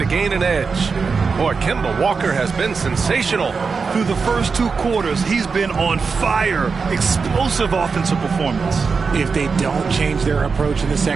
gain an edge. Boy, Kemba Walker has been sensational. Through the first 2 quarters, he's been on fire. Explosive offensive performance. If they don't change their approach in the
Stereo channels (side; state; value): left; quieter; 5.0 dB